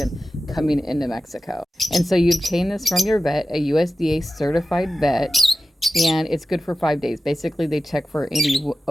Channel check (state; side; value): normal; both; correlation 0.93